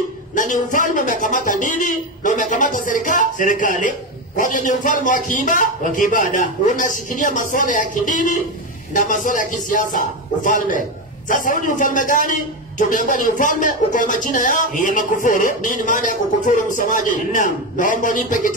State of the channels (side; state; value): both; normal; correlation 0.14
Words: na ni ufalme umekamata dini na umekamata serikali. Kwa hiyo ni ufalme wa kiibada, unashikilia masuala ya kidini na masuala ya kisiasa. Ufalme. Sasa huu ni ufalme gani? Tumeambiwa ni ufalme uko na majina ya makufuru. Nini maana ya kukufuru msomaji? Naam. Naomba nipe